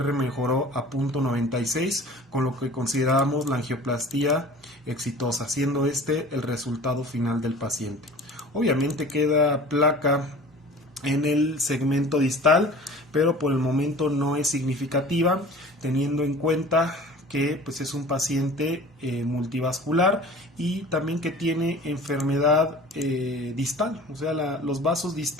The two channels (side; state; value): both; normal; correlation 0.42